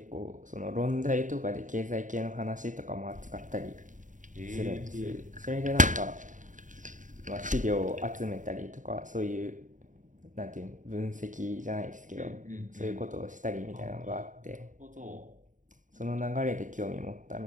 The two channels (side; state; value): left; late; 0.37 ms